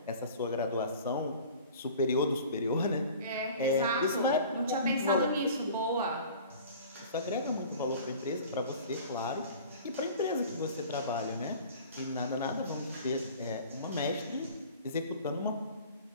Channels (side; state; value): both; inverted; correlation -0.44